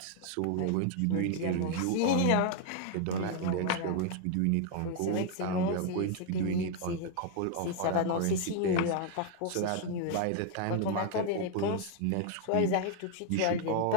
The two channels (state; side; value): different; both; correlation 0.00